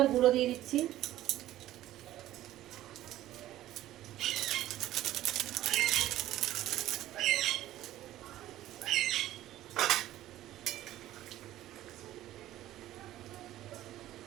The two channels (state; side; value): quieter; left; 14.2 dB